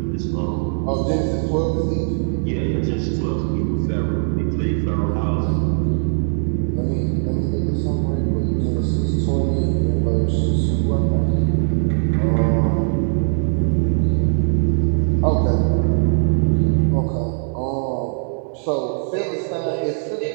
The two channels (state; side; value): silent; left; 58 dB below the other